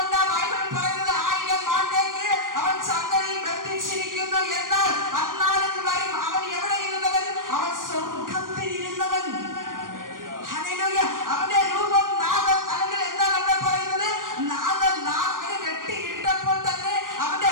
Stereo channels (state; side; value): late; left; 0.90 ms